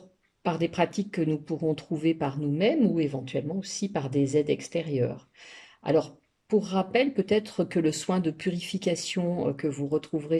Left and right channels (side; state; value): both; identical; correlation 1.00